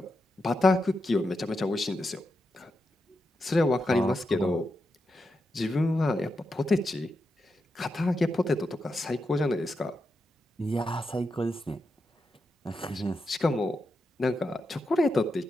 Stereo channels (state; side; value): normal; both; correlation 0.86